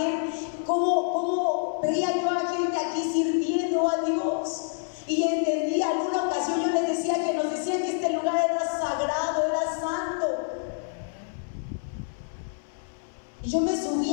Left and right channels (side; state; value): right; silent; 60 dB below the other